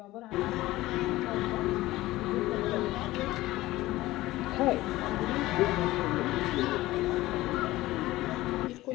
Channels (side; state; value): right; quieter; 17.6 dB